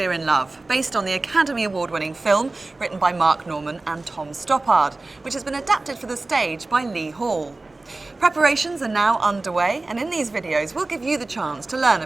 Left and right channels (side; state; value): left; quieter; 3.2 dB